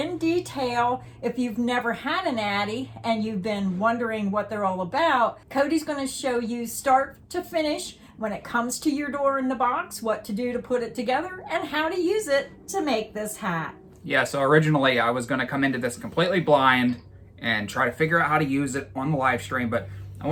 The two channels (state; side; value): identical; both; correlation 1.00